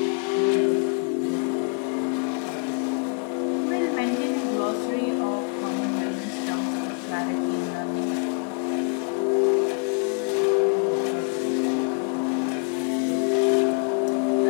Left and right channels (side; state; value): right; quieter; 38.8 dB